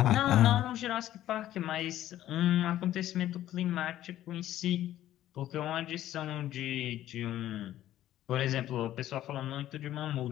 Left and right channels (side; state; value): right; quieter; 13.1 dB